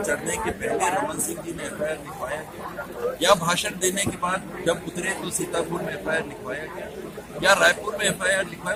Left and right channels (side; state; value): both; identical; correlation 1.00